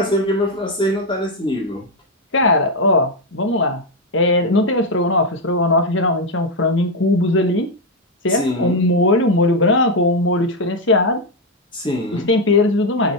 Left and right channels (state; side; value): normal; both; correlation 0.04